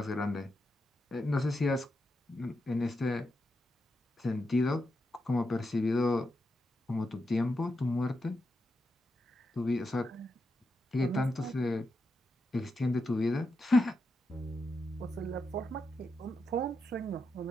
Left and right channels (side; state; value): both; normal; correlation 0.86